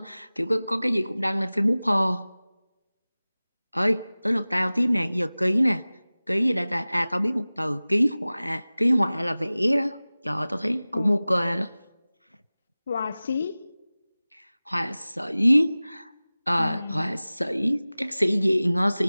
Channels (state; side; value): inverted; both; correlation -0.98